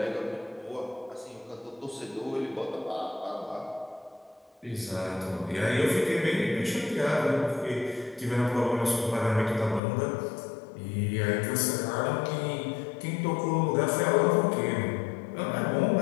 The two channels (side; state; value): right; drops out; at 9.8 s